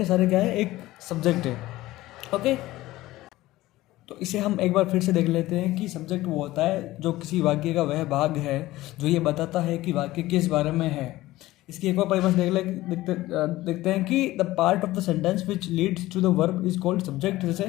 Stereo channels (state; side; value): quieter; right; 17.1 dB